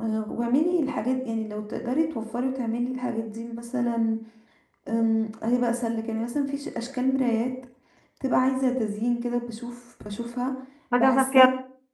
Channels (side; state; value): both; identical; correlation 1.00